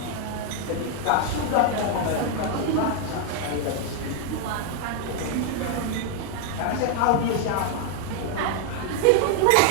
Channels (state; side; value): different; both; correlation 0.00